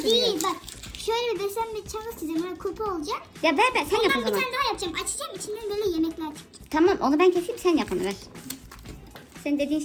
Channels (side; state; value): both; identical; correlation 1.00